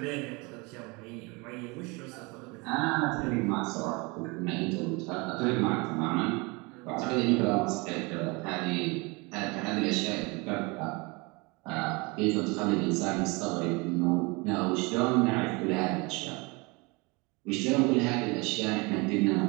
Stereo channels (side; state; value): left; quieter; 27.2 dB